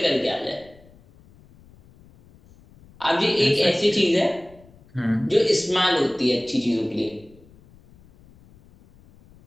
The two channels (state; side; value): noise; left; rumble, 26 dB below the sound